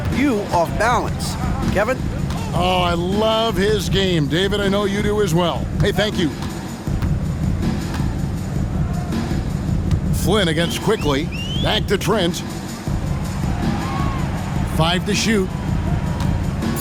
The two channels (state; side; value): identical; both; correlation 1.00